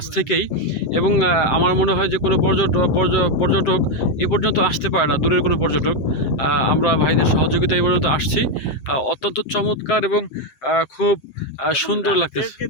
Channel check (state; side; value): late; right; 7.7 ms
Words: থেকেই। এবং আমার মনে হয় যে কোনো পর্যটক এ পর্যন্ত আসতে পারে না, দূরের কোনো পর্যটক। আমরা ভাইদের সহযোগিতা এই পর্যন্ত আসছি। অত্যন্ত চমৎকার এবং খুব সুন্দর লাগতেছে।